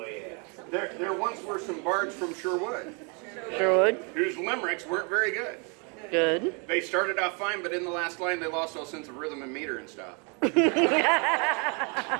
yeah. There once were some bards from Sherwood Sherwood. whose limericks weren't very good. Good. They started off fine, but in the last line they lost all sense of rhythm and meter and stuff.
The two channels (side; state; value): left; quieter; 34.6 dB